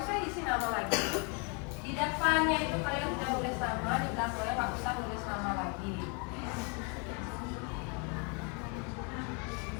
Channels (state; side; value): quieter; right; 33.3 dB